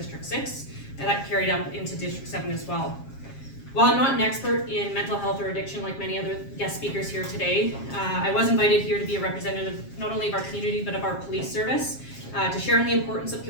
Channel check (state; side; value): late; right; 7.4 ms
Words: 6, and that carried up into District 7 as well. While I'm not an expert in mental health or addiction like many other guest speakers here today, I was invited here to be a representative not only of our community but of our police service to share in the importance of